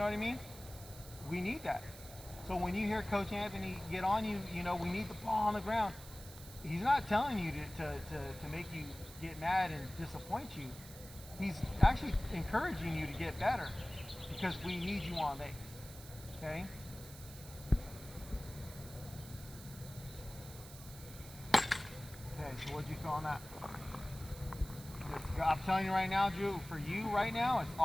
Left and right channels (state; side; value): noise; right; hiss, 16 dB below the sound